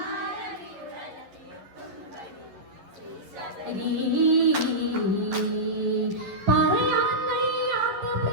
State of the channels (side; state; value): left; late; 11 ms